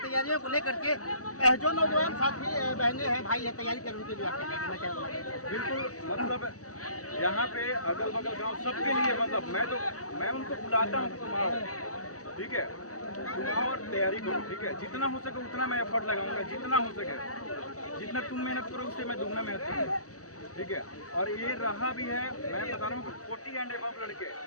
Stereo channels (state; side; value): late; right; 0.66 ms